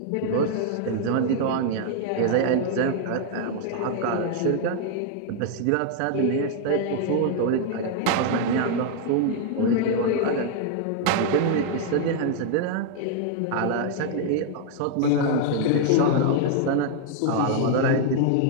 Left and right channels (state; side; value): different; both; correlation 0.00